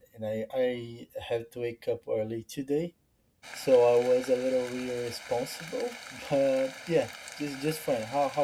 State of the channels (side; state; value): both; identical; correlation 1.00